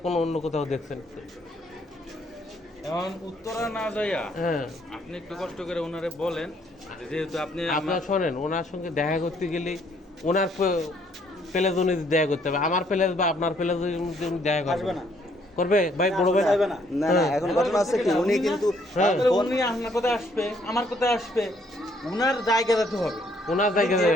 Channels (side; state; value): both; normal; correlation 0.67